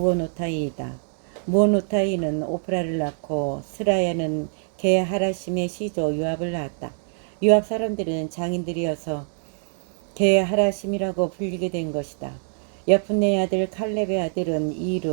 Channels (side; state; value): left; silent; 62 dB below the other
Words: 무오노타이는 오프라를 낳고 스라야는 게하라심의 시조 요압을 낳았다. 요압 사람들은 장인들이어서 게하라심이라고 불리게 된 것이다. 여푼네의 아들 칼렙의 아들은